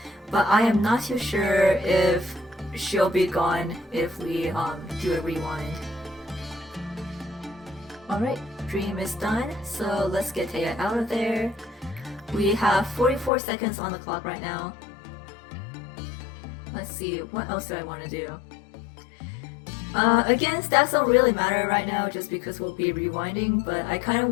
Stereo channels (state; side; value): drops out; right; at 13.3 s